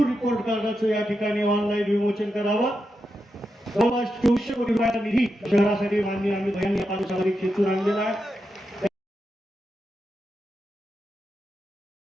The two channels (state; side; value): normal; both; correlation 0.87